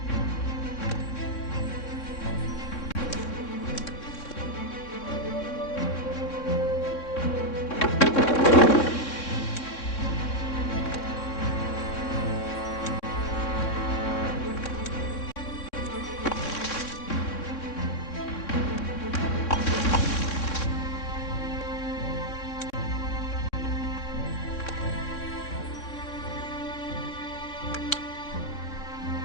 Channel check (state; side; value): late; right; 3.6 ms